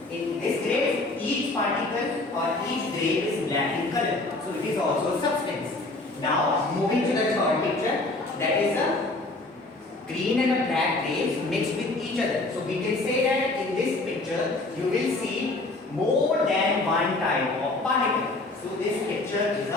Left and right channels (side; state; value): right; quieter; 3.0 dB